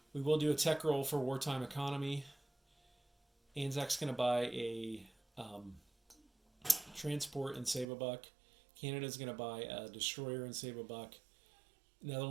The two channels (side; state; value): left; drops out; at 7.9 s